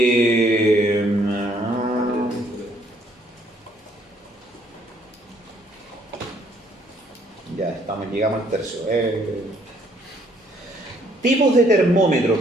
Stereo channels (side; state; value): both; normal; correlation 0.66